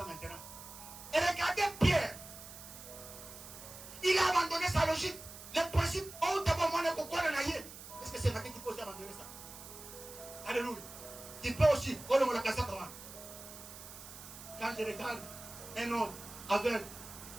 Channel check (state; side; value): noise; right; hiss, 14 dB below the sound